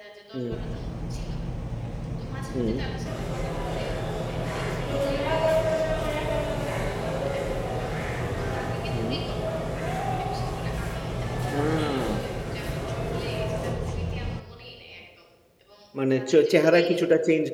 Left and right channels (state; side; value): identical; both; correlation 1.00